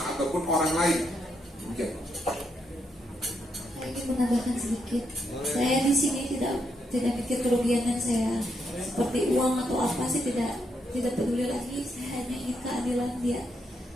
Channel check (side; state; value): both; normal; correlation 0.79